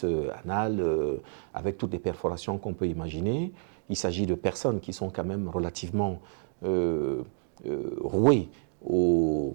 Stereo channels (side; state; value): left; silent; digital silence